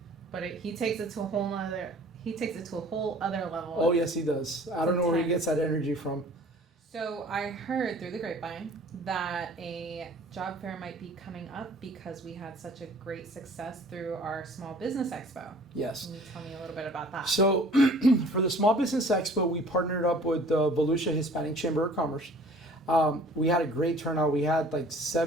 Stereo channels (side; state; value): both; normal; correlation 0.50